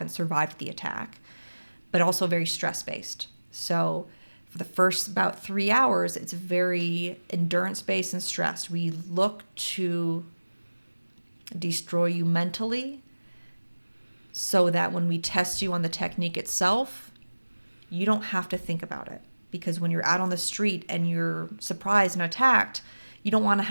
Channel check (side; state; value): both; inverted; correlation -1.00